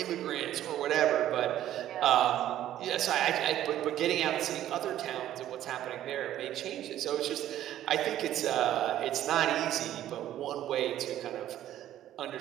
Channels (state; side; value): quieter; left; 12.4 dB